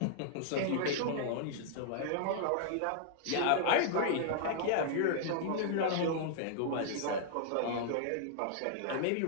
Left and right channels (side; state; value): both; different; correlation -0.01